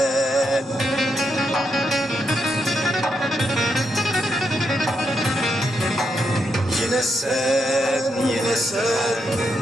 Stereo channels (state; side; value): normal; both; correlation 0.82